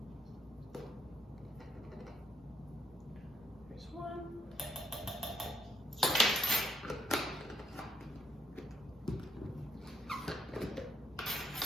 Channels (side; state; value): both; normal; correlation 0.73